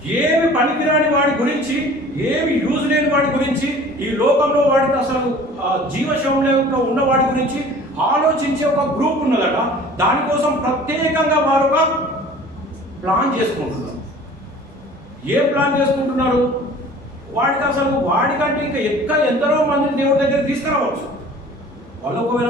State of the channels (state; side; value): normal; both; correlation 0.46